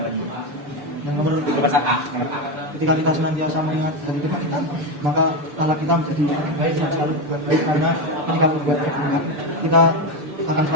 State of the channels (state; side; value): late; left; 6.8 ms